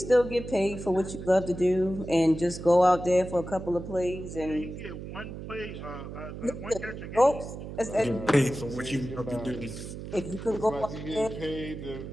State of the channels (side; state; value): right; noise; hum, 10 dB below the sound